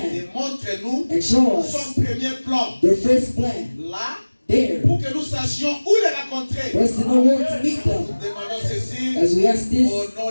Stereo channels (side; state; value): both; inverted; correlation -1.00